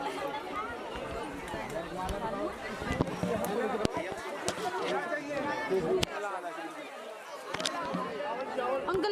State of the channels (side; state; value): both; identical; correlation 1.00